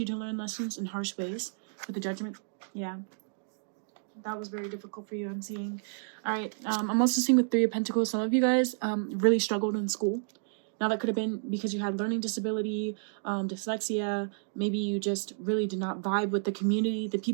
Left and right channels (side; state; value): left; silent; digital silence